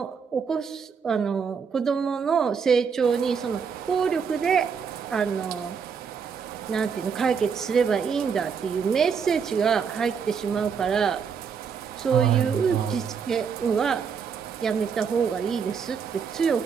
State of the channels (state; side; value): quieter; left; 6.3 dB